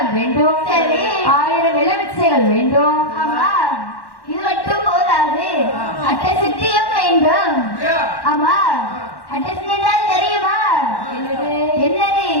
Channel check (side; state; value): right; late; 1.1 ms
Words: வேண்டும். சரி. 1000 எலுமிச்சைகள் வேண்டும். ஆமா, இது மட்டும் போதாது, அட்டை சித்தியும் வேண்டும். அப்படியா? ஆமா, அட்டை சித்தி என்றால் தெரியுமா? என்னது?